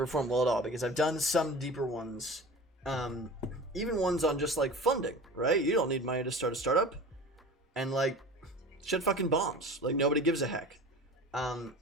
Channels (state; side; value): normal; both; correlation 0.37